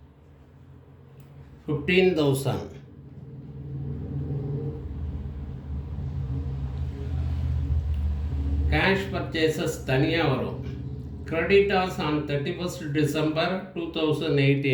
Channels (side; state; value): both; identical; correlation 1.00